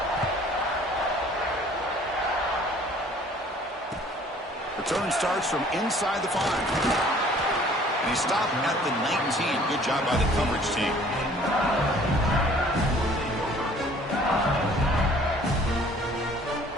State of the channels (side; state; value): both; normal; correlation 0.54